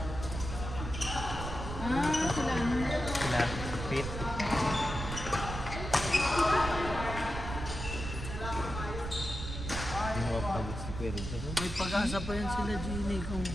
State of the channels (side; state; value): right; noise; rumble, 6 dB below the sound